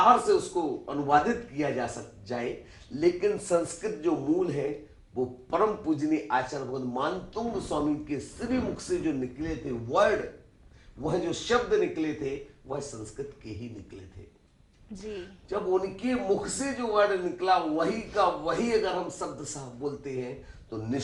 से उसको अनुवादित किया जाए, लेकिन संस्कृत जो मूल है वो परम पूजनीय आचार्य भगवत मानतुंग स्वामी के श्री मुख से जो निकले थे वर्ड, वह जो शब्द निकले थे वह संस्कृत के ही निकले थे जी। जब उनके मुख से जो वर्ड निकला वही का वही अगर हम शब्द साहब बोलते हैं तो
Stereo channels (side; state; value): both; identical; correlation 1.00